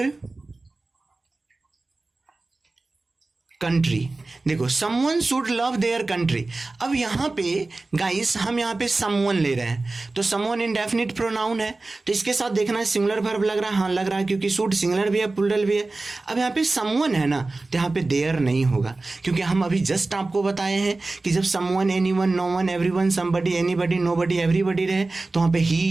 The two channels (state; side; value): quieter; left; 3.3 dB